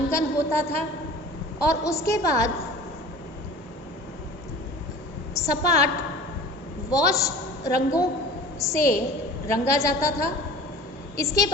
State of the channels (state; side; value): normal; both; correlation 0.41